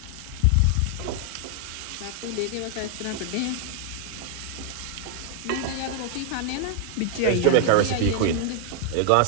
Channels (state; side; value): different; both; correlation 0.00